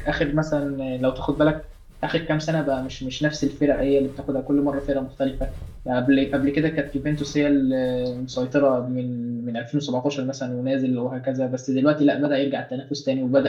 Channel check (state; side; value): identical; both; correlation 1.00